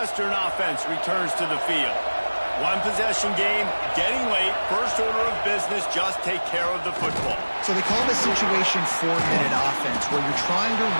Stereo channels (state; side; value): inverted; both; correlation -1.00